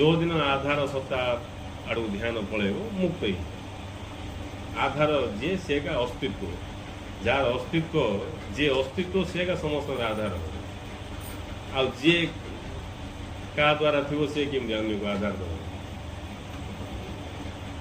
दिन आधार सत्ता आड़ ध्यान पलैब मुक्त ही आधार जे से का अस्तित्व जार अस्तित्व जे अस्तित्व से का समस्त आधार आ जे का द्वारा थी से केमती अन्य को आधार दे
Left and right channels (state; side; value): identical; both; correlation 1.00